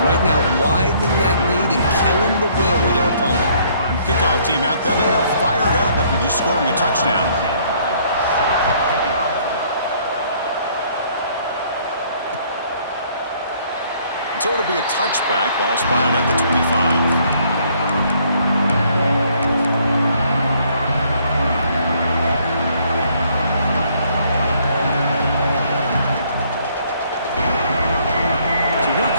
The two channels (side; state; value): both; inverted; correlation -0.64